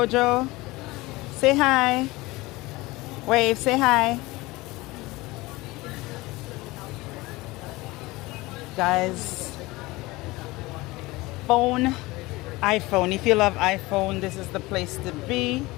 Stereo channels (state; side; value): quieter; right; 21.0 dB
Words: Say hi. Wave, say hi. Guys, iPhone. If you love iPhone, this is the place to be.